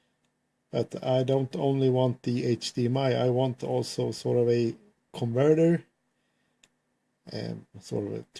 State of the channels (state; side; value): identical; both; correlation 1.00